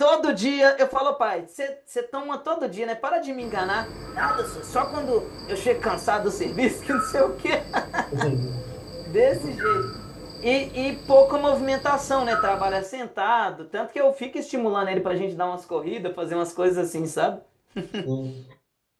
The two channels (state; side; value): identical; both; correlation 1.00